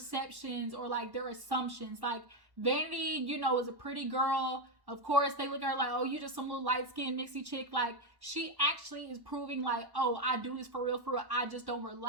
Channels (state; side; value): late; left; 1.1 ms